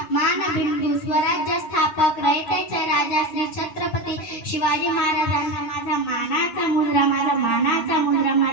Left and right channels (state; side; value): late; right; 9.5 ms